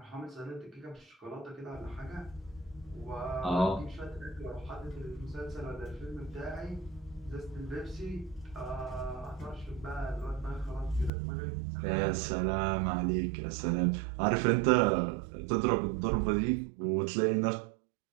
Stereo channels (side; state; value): left; drops out; at 11.1 s